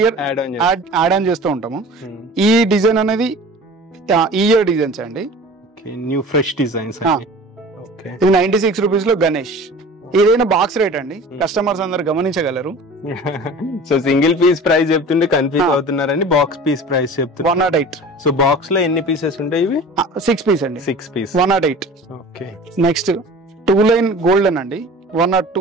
ఇయర్ యాడ్ ఆన్ చేస్తూ ఉంటాము. ఈ డిజైన్ అనేది ఈ ఇయర్ డిజైన్స్ అండి, న్యూ ఫ్రెష్ డిజైన్స్. ఇది 96 రూపీస్ లో గణేష్. ఏదైనా బాక్స్ రేట్ అండి, కస్టమర్స్ అందరు గమనించగలరు. సో సింగిల్ పీస్ ప్రైస్ చెప్తుంటే కన్ఫ్యూజ్ అవుతున్నారండి. బాక్స్ పీస్ ప్రైస్ చెప్తున్నారు 108. సో బాక్స్ లో ఎన్ని పీసెస్ ఉంటాయి? ఇవి 6 పీస్ అండి. 6 piece 108. Okay, next 2 line golden అండి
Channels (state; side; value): normal; both; correlation 0.41